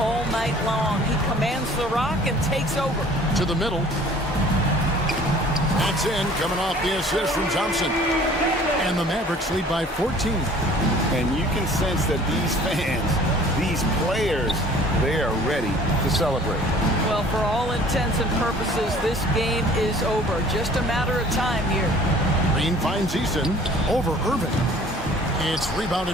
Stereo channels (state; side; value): normal; both; correlation 0.51